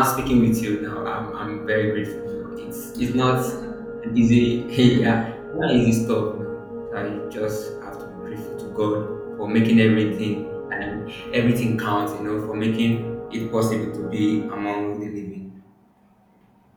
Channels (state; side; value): identical; both; correlation 1.00